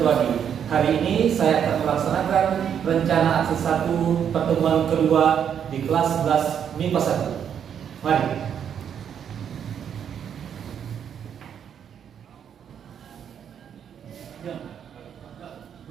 Dwadi. Hari ini saya akan melaksanakan rencana aksi 1 pertemuan kedua di kelas 11 MIPA 1. Mari.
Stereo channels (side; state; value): left; quieter; 8.4 dB